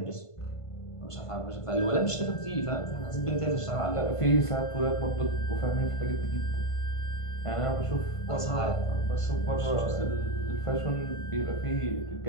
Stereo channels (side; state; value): right; late; 1.5 ms